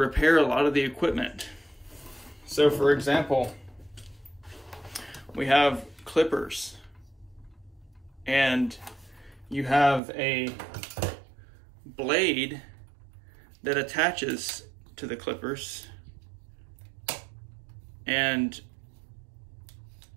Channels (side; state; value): left; drops out; at 10.0 s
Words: a lot of the equipment. So for example, we have clippers, and you have a blade that attaches to the clippers and